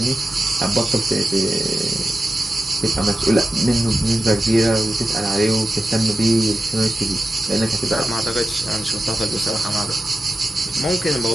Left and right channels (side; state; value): both; normal; correlation 0.93